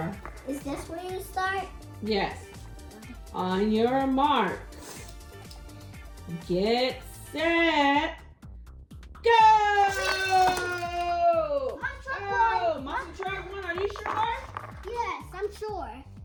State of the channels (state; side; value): identical; both; correlation 1.00